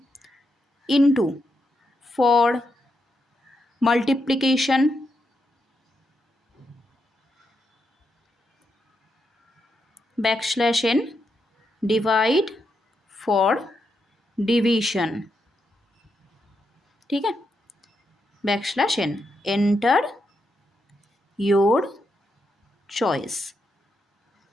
into for multiplication, backslash n, divide for division. ठीक है, backslash n, enter your choice.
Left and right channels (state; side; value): normal; both; correlation 0.82